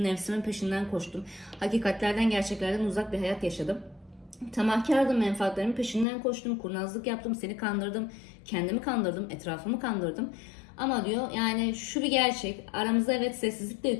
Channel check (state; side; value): drops out; right; at 6.1 s